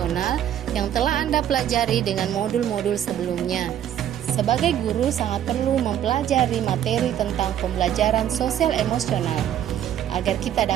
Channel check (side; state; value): left; quieter; 10.6 dB